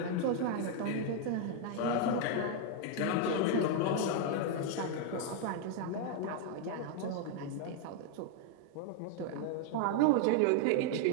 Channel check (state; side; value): different; both; correlation 0.00